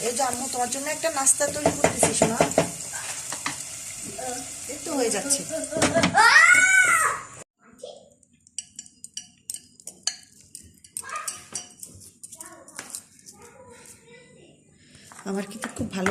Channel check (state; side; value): identical; both; correlation 1.00